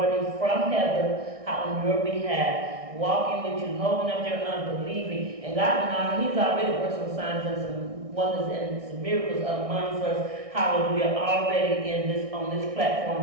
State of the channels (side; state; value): left; late; 1.6 ms